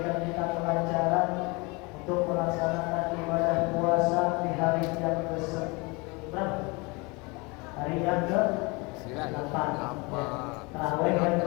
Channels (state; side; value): quieter; right; 27.3 dB